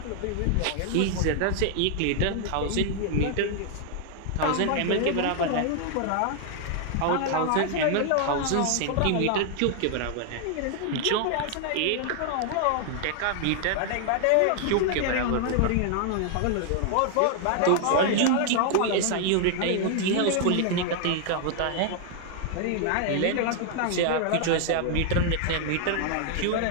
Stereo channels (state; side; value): different; both; correlation 0.00